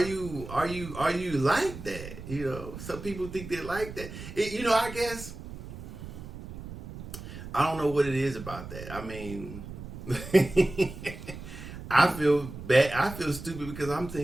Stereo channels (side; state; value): right; noise; rumble, 12 dB below the sound